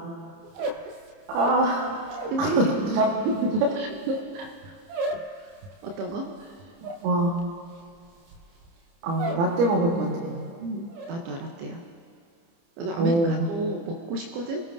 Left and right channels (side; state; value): left; late; 30 ms